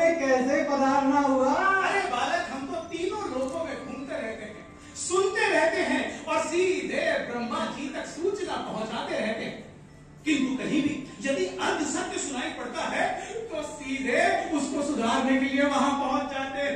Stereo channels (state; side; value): identical; both; correlation 1.00